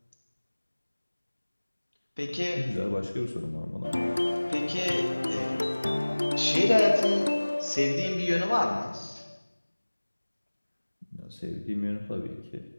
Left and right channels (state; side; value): inverted; both; correlation -1.00